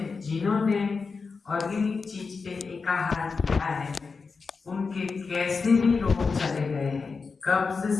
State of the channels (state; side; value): quieter; right; 4.7 dB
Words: जिन्होंने ऑर्गेनिक चीज पे एकाहार किया है उनके कैसे भी रोग चले गए हैं, कब्ज